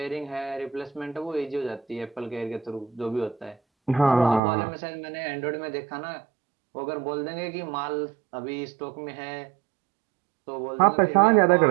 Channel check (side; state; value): left; drops out; at 4.4 s